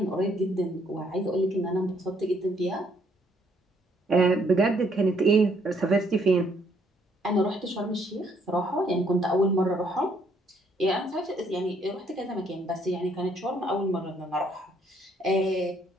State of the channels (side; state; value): both; normal; correlation 0.68